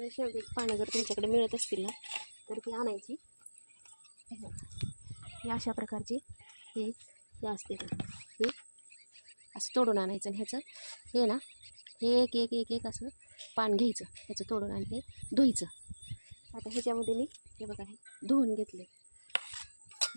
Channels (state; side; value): inverted; both; correlation -1.00